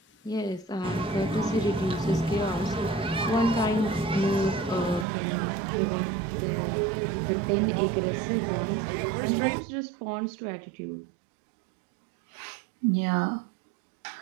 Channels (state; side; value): drops out; left; at 5.1 s